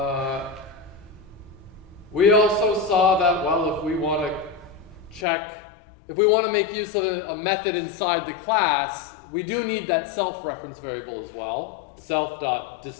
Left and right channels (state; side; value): drops out; right; at 5.2 s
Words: We also saw that, well, if we want to if we want to make use of a method inside the class, we do need that self-reference variable as well.